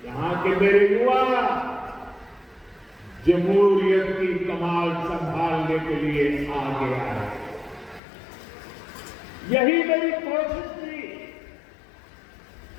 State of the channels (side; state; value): right; drops out; at 8.0 s